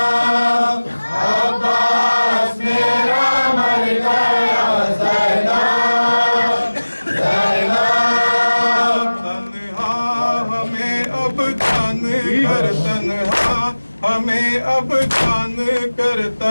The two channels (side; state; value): both; inverted; correlation -1.00